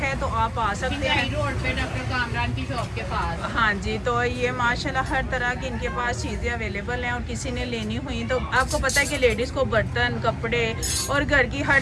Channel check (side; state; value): both; identical; correlation 1.00